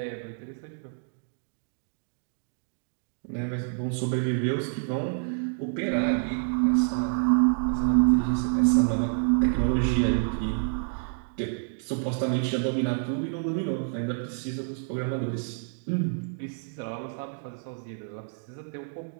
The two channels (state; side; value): silent; left; digital silence